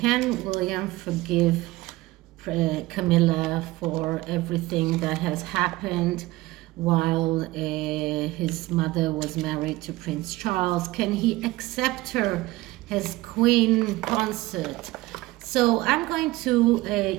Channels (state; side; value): quieter; left; 19.1 dB